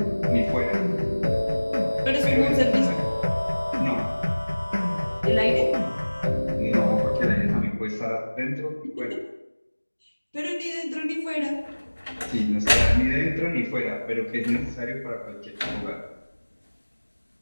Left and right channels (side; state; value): both; inverted; correlation -1.00